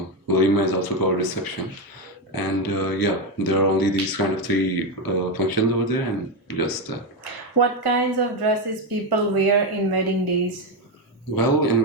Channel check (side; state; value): both; normal; correlation 0.09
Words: Walima is also called reception. And yeah, there are only these kind of three functions over there, and just that. What kinds of dresses people wear in wedding days? Well, in